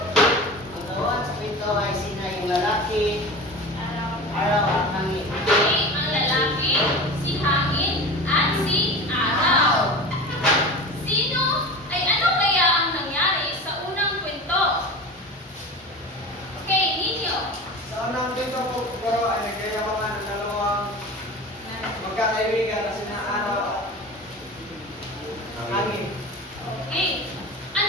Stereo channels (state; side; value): normal; both; correlation 0.32